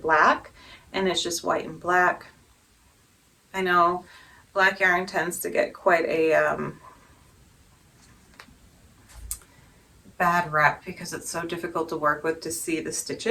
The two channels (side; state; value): both; identical; correlation 1.00